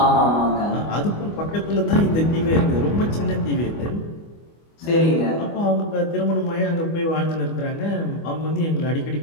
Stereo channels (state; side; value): late; right; 25 ms